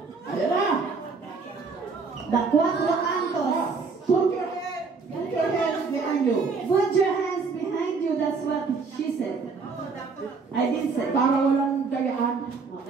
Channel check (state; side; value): quieter; left; 4.7 dB